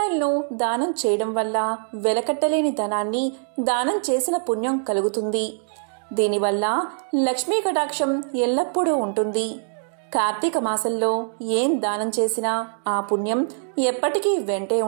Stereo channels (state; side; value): silent; left; digital silence